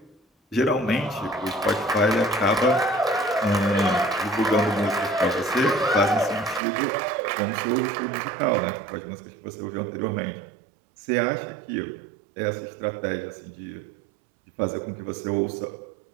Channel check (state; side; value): drops out; left; at 6.6 s